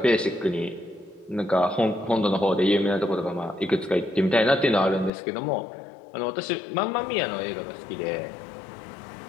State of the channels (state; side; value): drops out; right; at 5.1 s